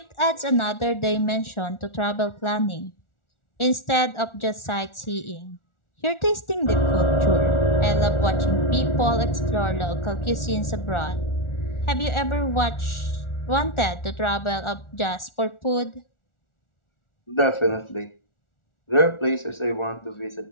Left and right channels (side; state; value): right; late; 1.4 ms